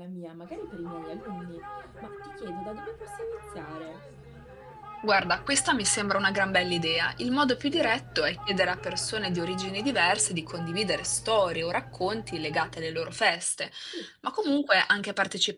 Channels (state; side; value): identical; both; correlation 1.00